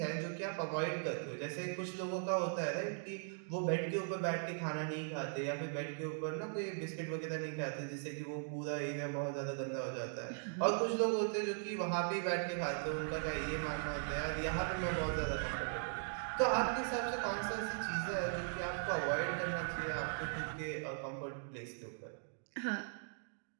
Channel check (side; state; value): left; silent; digital silence